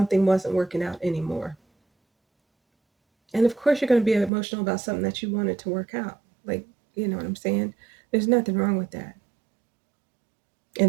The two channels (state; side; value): drops out; left; at 4.3 s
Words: wasn't working out anymore. And of course, you're going to be emotional about something that you wanted to work out. Like, you know what I'm saying? There's nothing wrong with that.